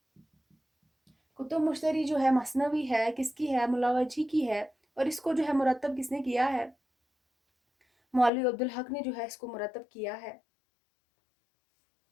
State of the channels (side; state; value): right; drops out; at 8.3 s